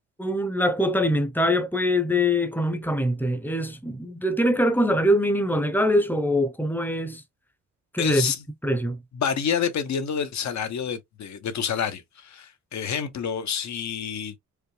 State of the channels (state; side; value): normal; both; correlation 0.56